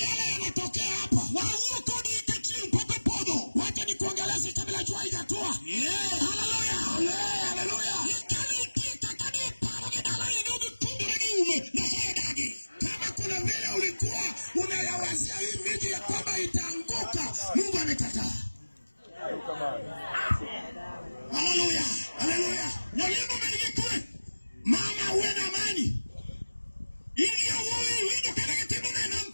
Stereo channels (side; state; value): both; inverted; correlation -1.00